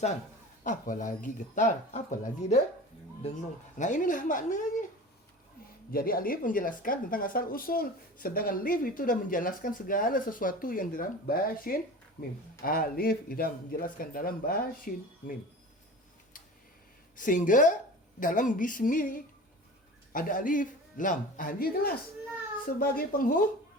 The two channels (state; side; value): normal; both; correlation 0.36